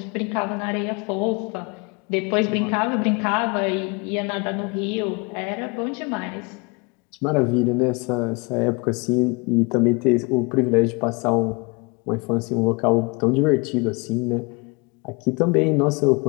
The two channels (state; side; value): quieter; right; 29.5 dB